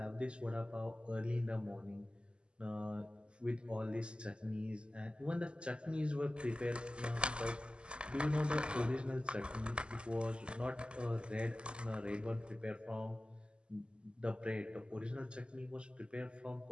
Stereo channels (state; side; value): late; left; 0.051 ms